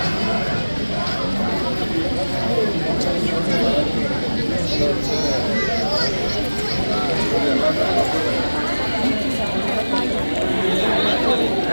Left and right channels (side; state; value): both; inverted; correlation -1.00